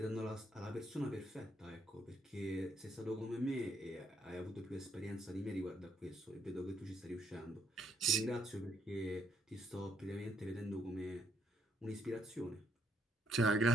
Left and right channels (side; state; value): both; normal; correlation 0.72